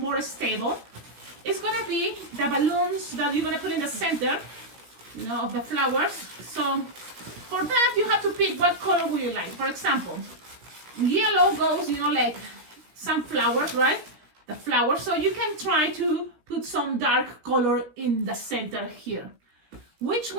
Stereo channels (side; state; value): left; late; 17 ms